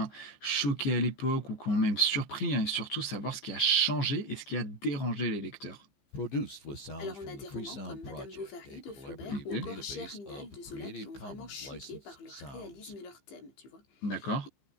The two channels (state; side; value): late; right; 15 ms